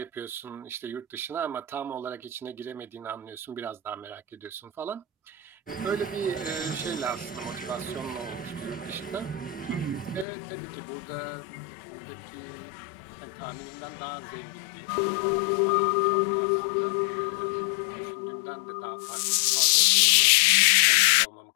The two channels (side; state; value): right; drops out; at 10.2 s